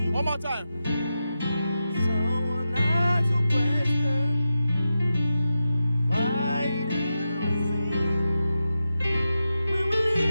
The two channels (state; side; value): inverted; both; correlation -0.91